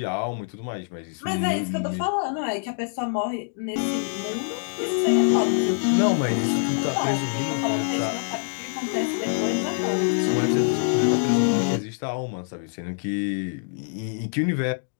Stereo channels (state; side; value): silent; right; digital silence